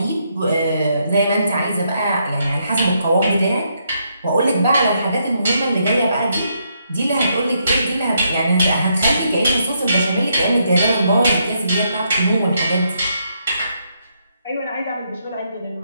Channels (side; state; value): both; inverted; correlation -0.77